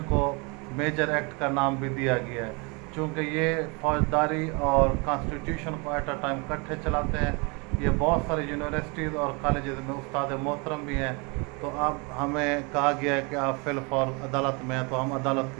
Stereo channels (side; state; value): left; quieter; 30.5 dB